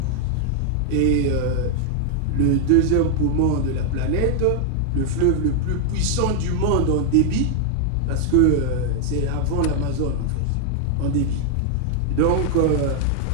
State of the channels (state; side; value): different; both; correlation 0.00